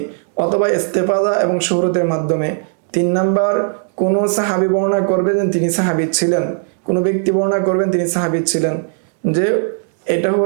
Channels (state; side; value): silent; left; digital silence